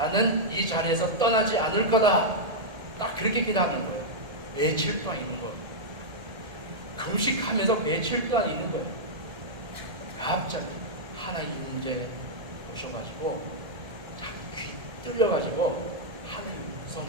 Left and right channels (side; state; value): left; late; 1.7 ms